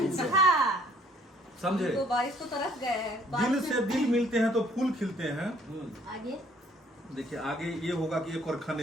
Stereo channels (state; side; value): normal; both; correlation 0.61